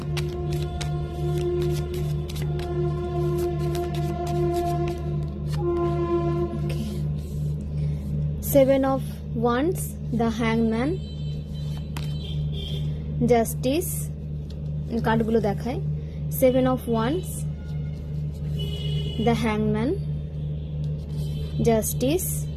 Seven of Wands, the Hangman, Justice, কার্ডগুলো দেখায়। Seven of Wands, the Hangman, Justice,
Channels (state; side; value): identical; both; correlation 1.00